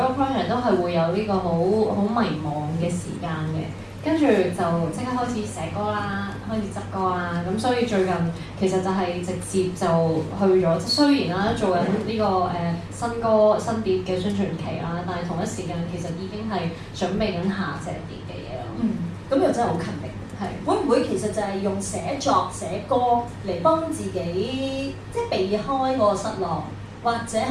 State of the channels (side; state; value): both; identical; correlation 1.00